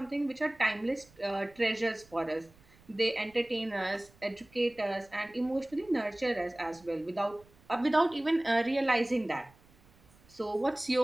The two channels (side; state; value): right; noise; rumble, 28 dB below the sound